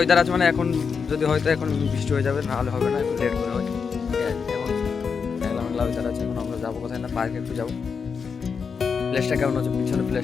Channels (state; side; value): quieter; right; 5.8 dB